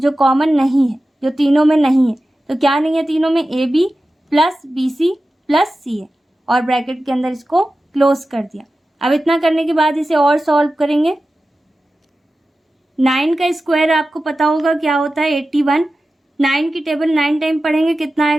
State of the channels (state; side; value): normal; both; correlation 0.94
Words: कॉमन नहीं है, जो तीनों में नहीं है। तो क्या नहीं है तीनों में, A B plus B C plus C है, और ब्रैकेट के अंदर इसको क्लोज कर दिया। अब इतना करने के बाद इसे और सॉल्व करेंगे। 9 का स्क्वायर आपको पता होगा क्या होता है, 81। 9 की टेबल 9 टाइम पढ़ेंगे, कितना